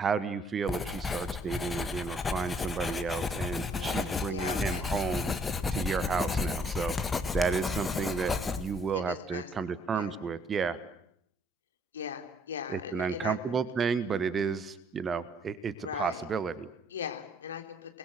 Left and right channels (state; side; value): normal; both; correlation 0.65